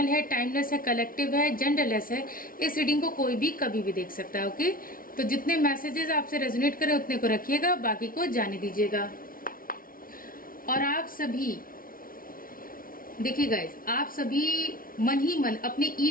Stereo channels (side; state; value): right; late; 0.42 ms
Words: है, टाइमलेस है, कलेक्टिव है, जेंडरलेस है। इस रीडिंग को कोई भी कभी भी देख सकता है। ओके, तो जितने मैसेजेस आपसे रेजोनेट करें उतने को रखिएगा, बाकी को जाने दीजिएगा। और आप सभी देखिए गाइस, आप सभी मन ही मन अपने